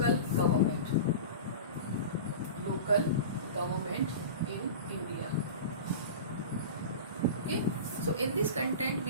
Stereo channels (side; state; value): both; inverted; correlation -0.31